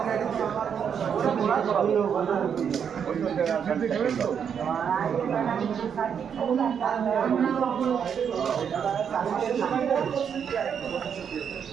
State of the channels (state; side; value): quieter; left; 7.5 dB